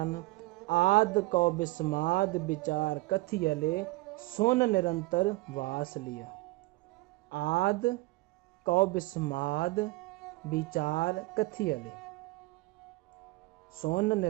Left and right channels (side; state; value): left; quieter; 21.5 dB